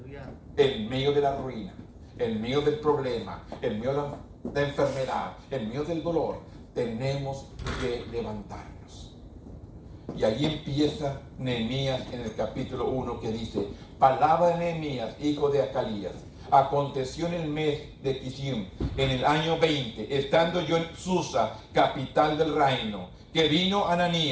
en medio de la ruina, en medio del problema, en medio de enfermedad, en medio del dolor, tenemos que levantarnos. Y allí empieza Nehemías en el capítulo 1 que dice: palabra de Nehemías, hijo de Acalías. Aconteció en el mes de Kislev, en el año 20, estando yo en Susa, capital del reino, que vino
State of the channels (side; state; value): both; identical; correlation 1.00